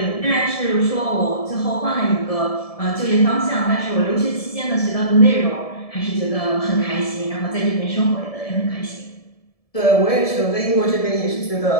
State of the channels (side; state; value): right; late; 1.7 ms